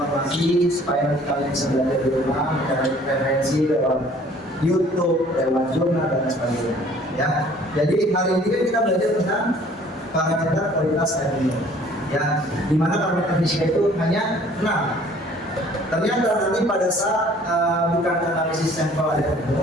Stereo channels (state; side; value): normal; both; correlation 0.54